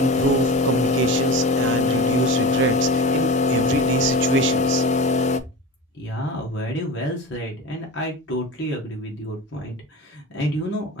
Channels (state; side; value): normal; both; correlation 0.29